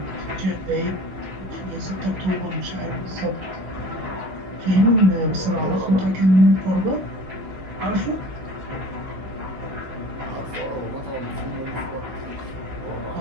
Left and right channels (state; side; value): late; left; 16 ms